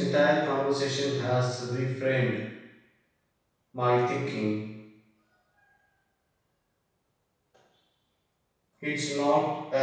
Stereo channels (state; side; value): identical; both; correlation 1.00